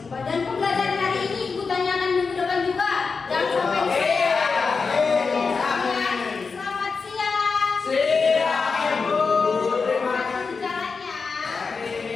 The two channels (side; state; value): right; quieter; 4.8 dB